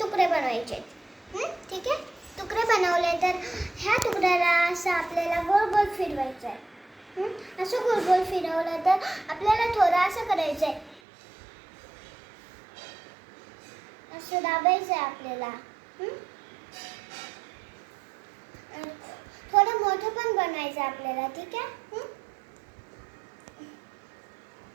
तुकडे बनवायचे, ठीक आहे. तुकडे बनवले तर ह्या तुकड्याला असं आपल्याला गोल गोल फिरवायचं आहे. असं गोल गोल फिरवलं तर आपल्याला थोडं असं करायचं आहे, असं दाबायचं आहे आपल्याला. थोडं मोठं पण बनवायचं आपल्याला, ठीक आहे.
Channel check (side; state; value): left; drops out; at 11.0 s